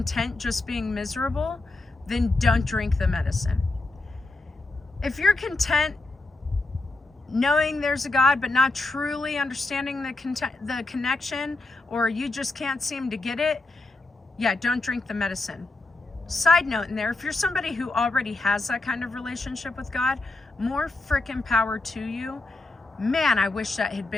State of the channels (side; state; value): right; quieter; 3.1 dB